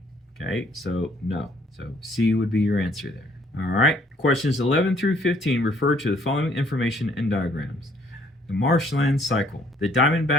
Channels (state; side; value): normal; both; correlation 0.63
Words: Okay, so no. So C would be your answer there. All right, questions 11 through 15 refer to the following information and diagrams. The marshland cycle. The